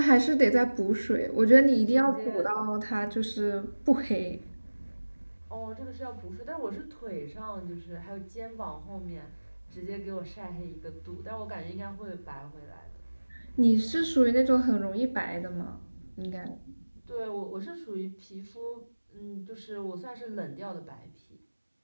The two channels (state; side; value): inverted; both; correlation -1.00